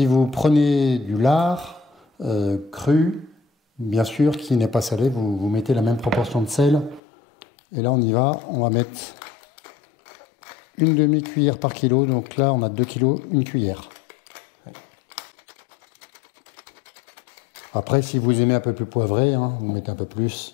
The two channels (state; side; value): drops out; right; at 7.0 s